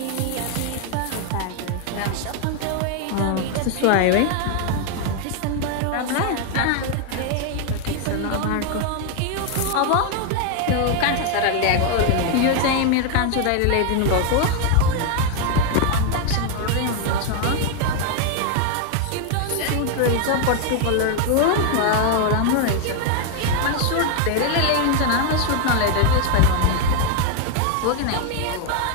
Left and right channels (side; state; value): both; different; correlation 0.01